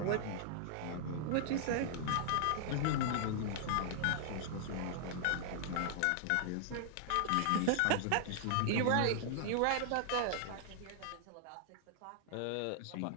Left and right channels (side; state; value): both; different; correlation -0.01